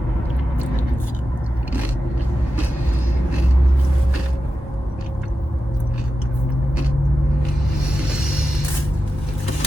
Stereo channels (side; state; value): both; normal; correlation 0.91